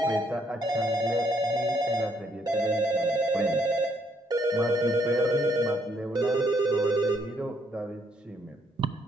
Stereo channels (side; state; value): both; normal; correlation 0.70